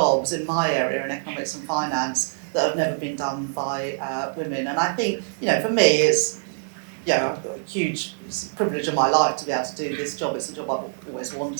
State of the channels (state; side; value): silent; left; digital silence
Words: in my area in economics and finance that have never been done by women. And I think, for me, it's I've got a huge privilege in my life to be able to do this job. It's a job I've always